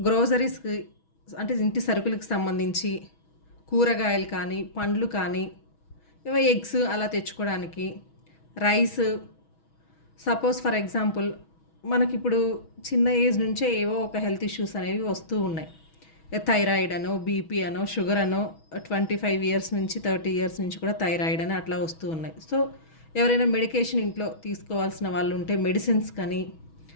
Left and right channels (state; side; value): late; right; 6.2 ms